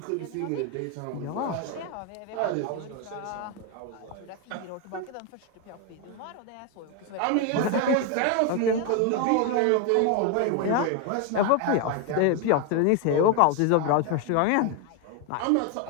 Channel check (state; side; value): different; both; correlation 0.01